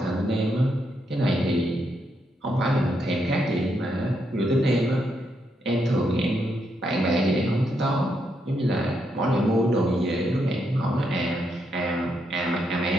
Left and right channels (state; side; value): normal; both; correlation 0.79